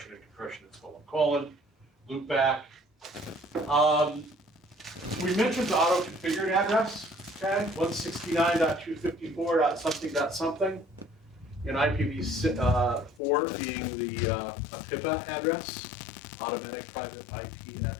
and compression, it's ::. Loopback. We mentioned the auto-configured address, okay? 169.254.something.something. In IPv4 being the PIPA address, automatic private IP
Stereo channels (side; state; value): right; drops out; at 13.2 s